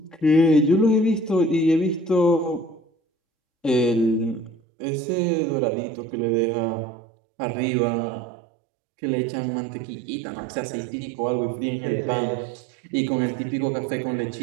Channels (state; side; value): drops out; left; at 4.5 s